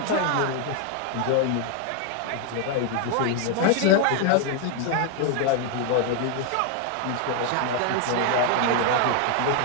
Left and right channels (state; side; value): different; both; correlation 0.00